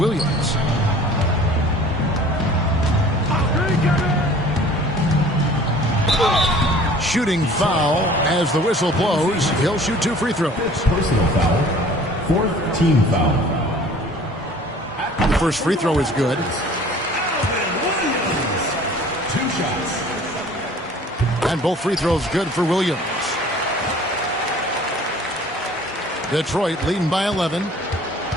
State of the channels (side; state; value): both; normal; correlation 0.49